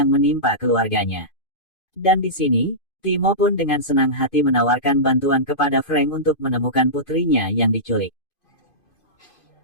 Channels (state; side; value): late; right; 2.5 ms